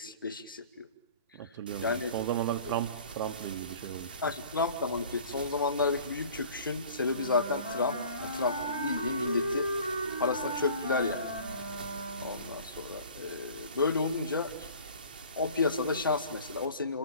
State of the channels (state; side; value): inverted; both; correlation -0.46